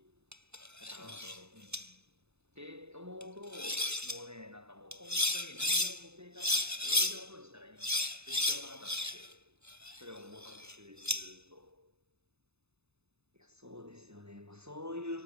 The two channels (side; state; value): left; late; 0.80 ms